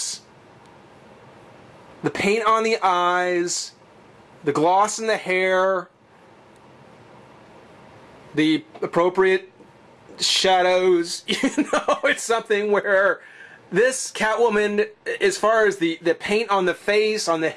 the paint on the eyes, the gloss in the hair, the appropriate shadows. You know, it's something where this Catwoman, as far as the paint on the face, on the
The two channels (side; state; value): both; identical; correlation 1.00